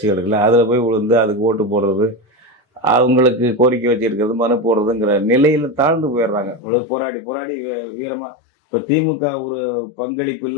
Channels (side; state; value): right; drops out; at 6.6 s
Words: இருக்குல்ல, அதில் போய் விழுந்து அதுக்கு ஓட்டு போடுறது, அவங்களுக்கு கோரிக்கை வச்சுருக்கிறது, மனு போடுறதுங்கிற நிலையில் தாழ்ந்து போயிடுறாங்க. இவ்வளவு போராடி போராடி வீரமாக இப்போ திமுக ஒரு பங்களிப்பு